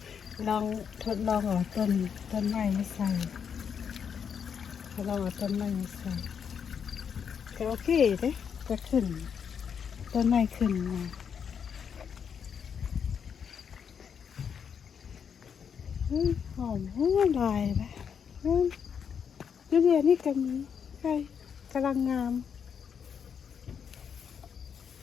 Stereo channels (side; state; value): right; quieter; 7.2 dB